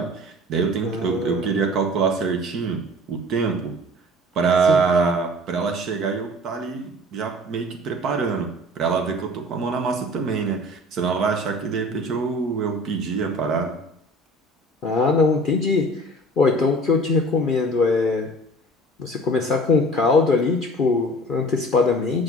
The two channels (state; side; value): normal; both; correlation 0.44